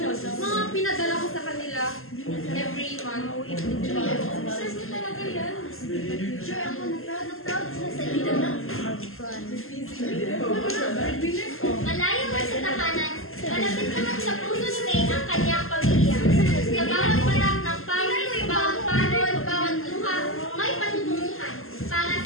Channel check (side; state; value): right; late; 0.61 ms